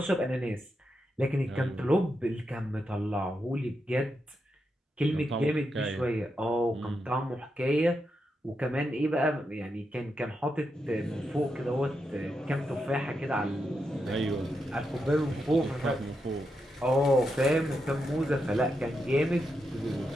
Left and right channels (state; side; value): normal; both; correlation 0.85